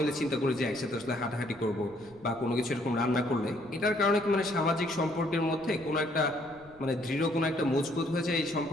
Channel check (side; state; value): left; noise; rumble, 26 dB below the sound